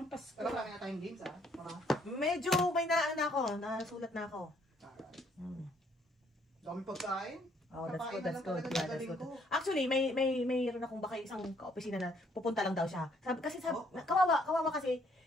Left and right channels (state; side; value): normal; both; correlation 0.66